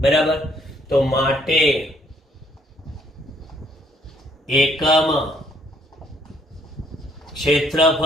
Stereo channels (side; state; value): both; normal; correlation 0.65